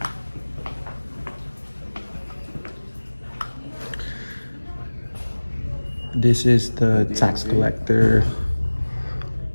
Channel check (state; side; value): inverted; both; correlation -1.00